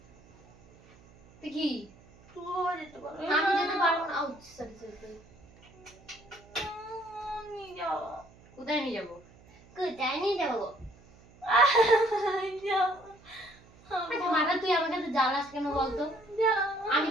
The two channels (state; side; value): noise; right; hum, 25 dB below the sound